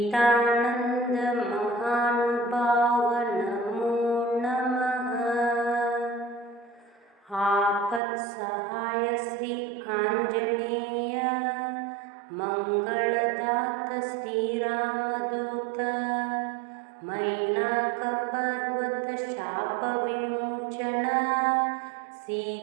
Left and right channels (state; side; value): drops out; left; at 8.0 s